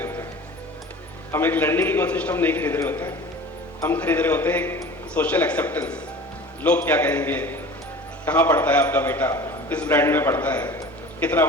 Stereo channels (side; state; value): both; normal; correlation 0.40